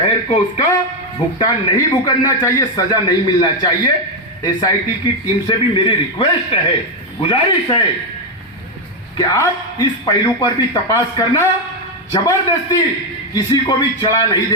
को उसका भुगतान नहीं भुगतना चाहिए, सजा नहीं मिलना चाहिए। एसआईटी की टीम से भी मेरी रिक्वेस्ट है, गुजारिश है कि आप इस पहलू पर भी तपास करना, जबरदस्ती किसी को भी चढ़ा नहीं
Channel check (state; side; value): normal; both; correlation 0.04